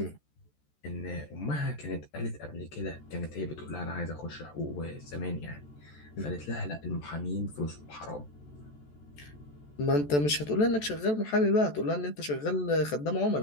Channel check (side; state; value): right; late; 14 ms